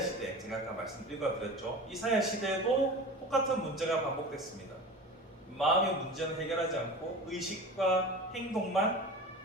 제가 아까 읽어드렸죠. 이사야 시대에도 똑같은 문제가 반복됐습니다. 마음의 문제는 해결하지 않고 의식과 행동만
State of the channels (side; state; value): both; normal; correlation 0.34